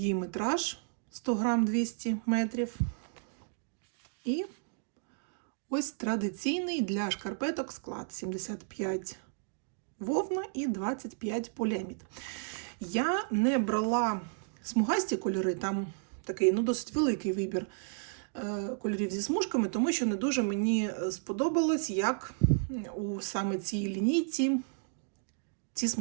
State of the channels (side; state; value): left; silent; digital silence